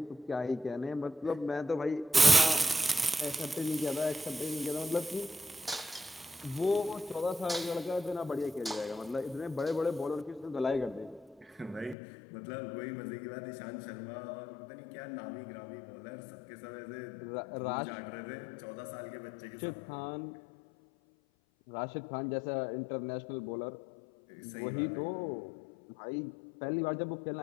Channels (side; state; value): right; drops out; at 12.0 s